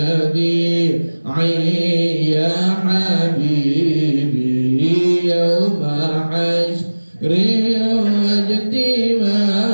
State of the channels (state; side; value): inverted; both; correlation -1.00